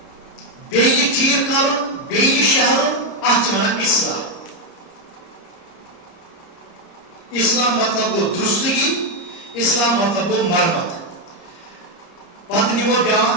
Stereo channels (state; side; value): late; right; 30 ms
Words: بیٚیہِ ٹھیٖک کرُن بیٚیہِ شہرُن اتھ چھِ ونان اصلاح اصلاح مطلب گوٚو درستگی اصلاح مطلب گوٚو مرمت پتہٕ نِمو